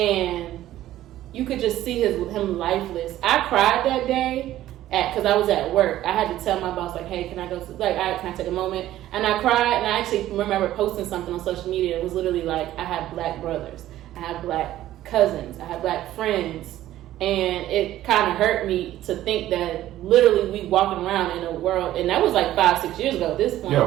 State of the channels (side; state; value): left; quieter; 13.8 dB